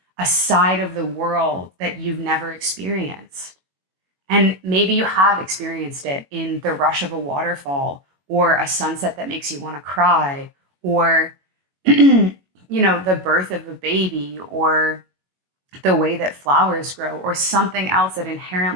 a side of the world that you've never experienced. And maybe you have experienced it in the rush of a waterfall or a sunset that makes you want to cry or the birth of a baby or the way that flowers grow or something else that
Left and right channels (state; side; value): late; left; 21 ms